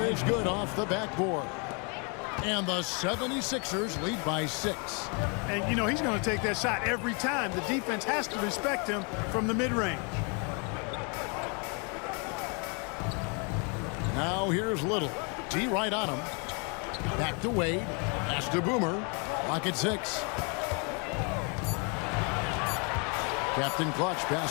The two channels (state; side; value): quieter; right; 34.7 dB